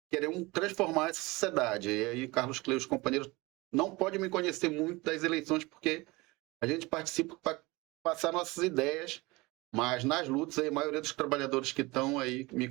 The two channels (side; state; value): left; quieter; 22.9 dB